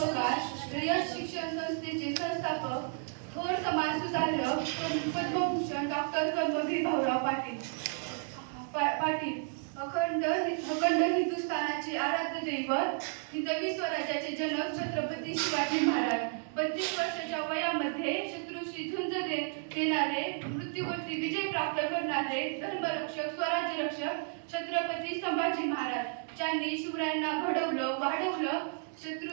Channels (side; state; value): left; silent; 56 dB below the other